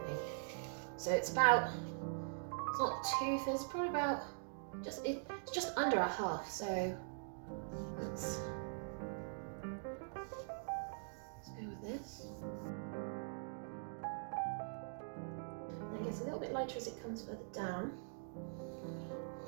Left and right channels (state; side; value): silent; left; digital silence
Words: think. So it's about, it's not too thin, it's probably about it's just under a half, so let's go with this. And it gets a little bit lighter as it comes further down.